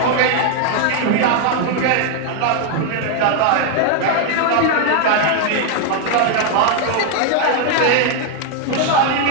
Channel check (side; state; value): both; different; correlation 0.00